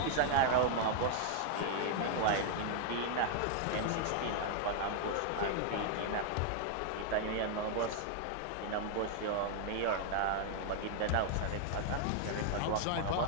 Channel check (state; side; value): different; both; correlation 0.00